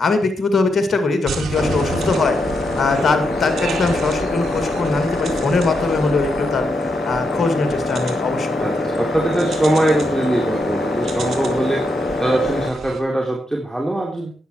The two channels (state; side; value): normal; both; correlation 0.82